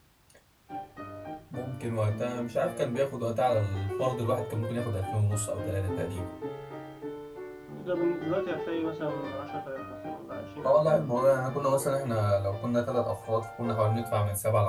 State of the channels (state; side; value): identical; both; correlation 1.00